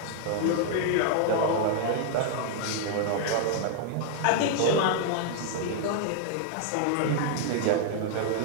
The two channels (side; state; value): both; different; correlation 0.00